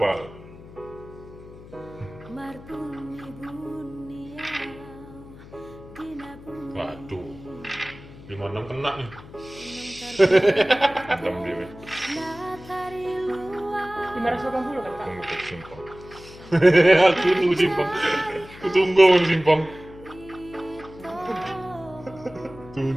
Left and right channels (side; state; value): left; noise; hum, 18 dB below the sound